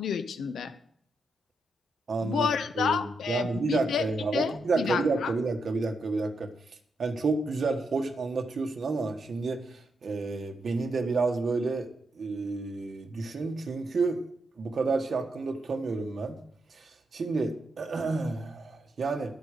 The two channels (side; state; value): both; normal; correlation 0.82